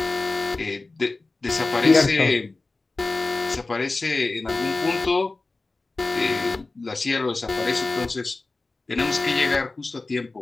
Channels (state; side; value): quieter; right; 3.4 dB